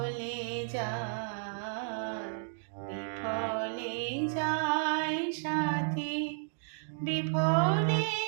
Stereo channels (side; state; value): left; silent; digital silence